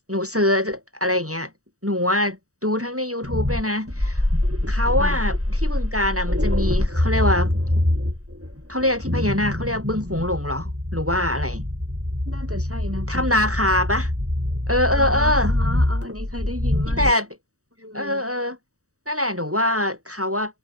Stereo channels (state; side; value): late; left; 0.65 ms